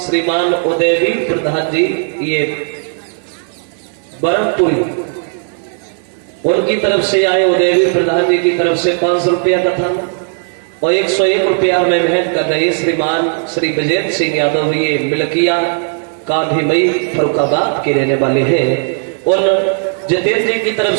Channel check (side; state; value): left; silent; 57 dB below the other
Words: उदयवीर प्रधान जी, ये बरमपुरी, उनकी तरफ से आए। उदयवीर प्रधान जी की तरफ से 500 रुपया कथा और 101 रुपया में भेंट कर रहे श्रीमान श्री विजेंद्र सिंह यादव, ये मिलकिया कांधीमई फरुखाबाद के रहने वाले हैं। उन जितेंद्र जी की तरफ